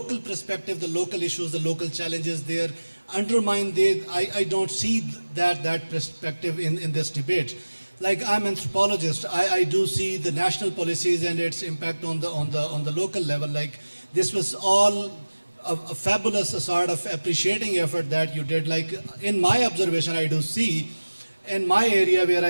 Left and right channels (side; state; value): both; inverted; correlation -1.00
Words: perspective, the local issues, the local challenges, they are undermined. I don't see that perspective in this debate. Like I'm an anthropologist, I do see the national policies and its impact on the local level. Like this was all a fabulous sort of appreciating effort that you did. Like in my observation, I do see in my area where